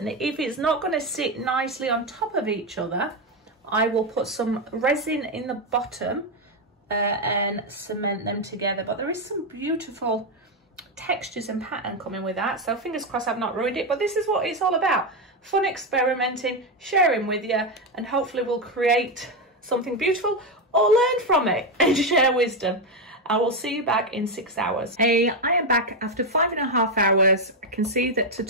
if it's not going to sit nicely on top of each other, I will put some resin in the bottom and cement them together. But there is some beautiful textures and pattern coming with that, so fingers crossed I've not ruined it. But this is what it's all about: fun experimenting, sharing with you, and hopefully we'll create something beautiful or learn from it and share wisdom. I will see you back in 6 hours. Hey, I am back after 5.5 hours. I can see that to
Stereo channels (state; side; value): normal; both; correlation 0.07